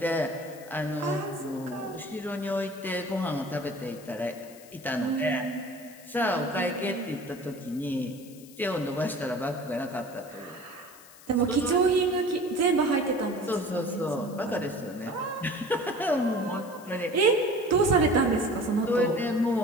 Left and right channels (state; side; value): noise; left; hiss, 21 dB below the sound